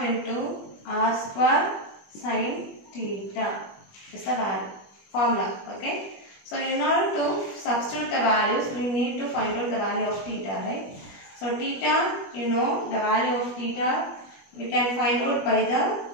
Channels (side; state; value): right; late; 21 ms